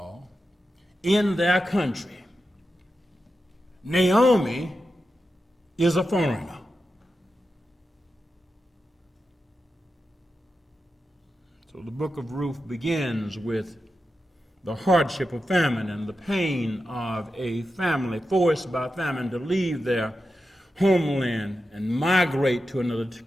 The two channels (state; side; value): normal; both; correlation 0.90